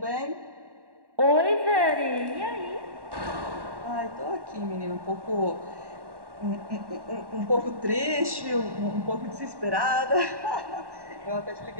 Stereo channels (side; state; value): left; late; 1.1 ms